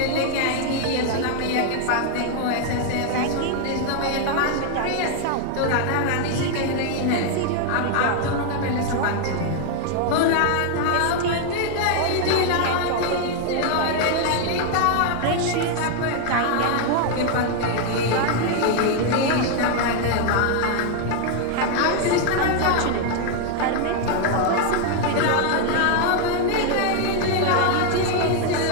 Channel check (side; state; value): both; different; correlation 0.00